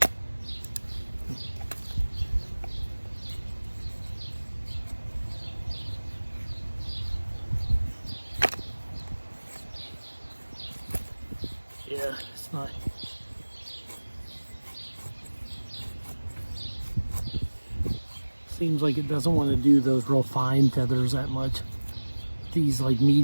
Yeah, it's not. Seems like it doesn't want to do those real fine feathers that much. These like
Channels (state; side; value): inverted; both; correlation -1.00